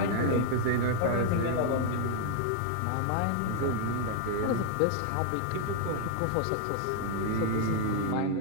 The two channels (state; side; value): different; both; correlation 0.00